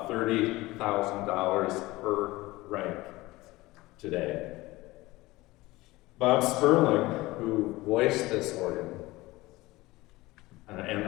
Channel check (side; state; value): right; quieter; 19.8 dB